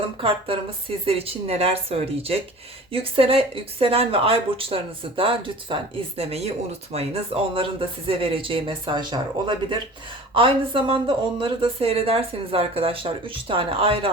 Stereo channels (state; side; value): normal; both; correlation 0.42